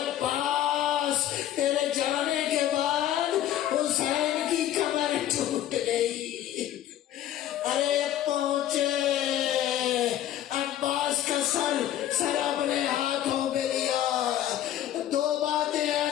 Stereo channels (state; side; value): quieter; right; 12.0 dB